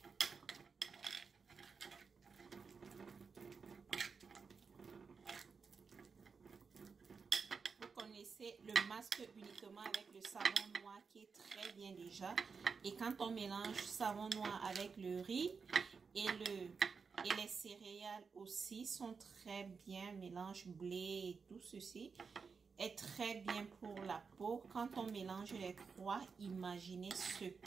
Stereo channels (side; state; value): left; quieter; 5.3 dB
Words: Vous connaissez le masque uniquement avec le savon noir qui est très bien déjà. Et quand on mélange savon noir avec le riz et les céréales aussi sont très bien. Mélange blé et tout ceci est très bien pour la peau. Quand on mélange les trois, imaginez ce